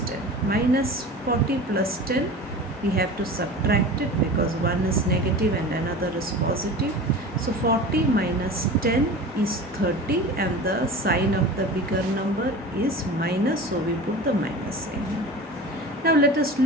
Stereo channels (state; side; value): normal; both; correlation 0.35